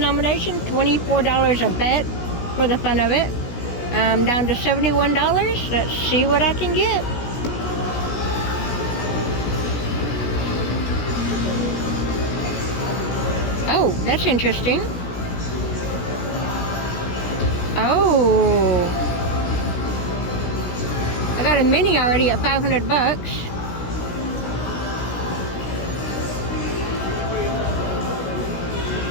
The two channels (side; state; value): right; late; 17 ms